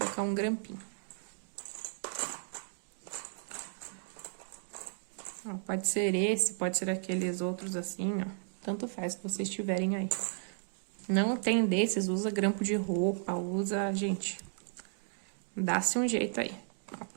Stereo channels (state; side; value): silent; left; digital silence